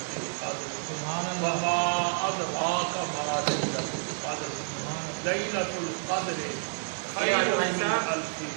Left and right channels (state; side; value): silent; left; 58 dB below the other